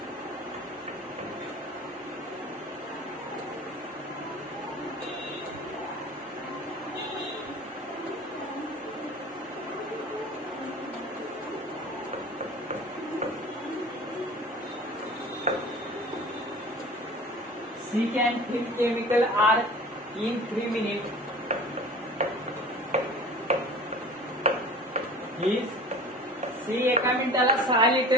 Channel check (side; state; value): both; normal; correlation 0.40